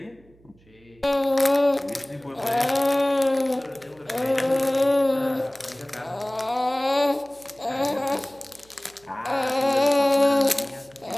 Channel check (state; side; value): noise; right; hum, 29 dB below the sound